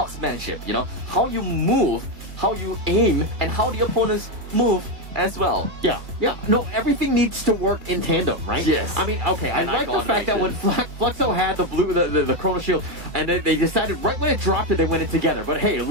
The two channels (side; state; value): left; late; 2.2 ms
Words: how you move, how you aim, and how the opponents move as well. Yeah. No, everything needs to work in tandem, right? Yes. I mean, okay, I like the fact that when Fluxo had the Chrono Shield, and then they decided right when it dropped it, they went in together. But hey,